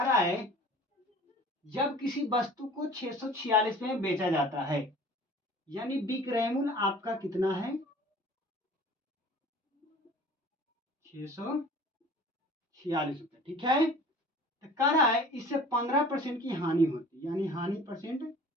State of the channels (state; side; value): normal; both; correlation 0.46